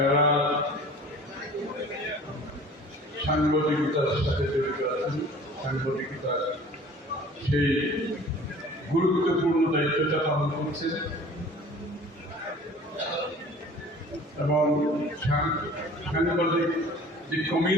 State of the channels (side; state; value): both; normal; correlation 0.46